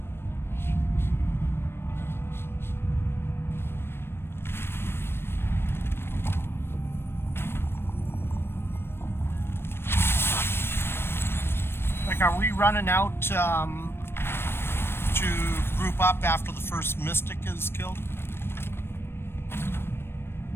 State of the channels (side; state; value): right; late; 0.12 ms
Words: Like, are we running out to group up after the first mystic is killed?